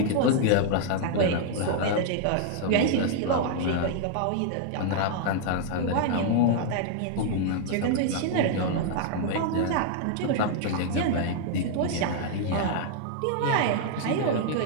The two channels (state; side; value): different; both; correlation -0.01